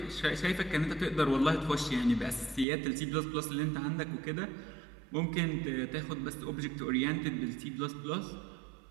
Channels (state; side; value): drops out; left; at 2.7 s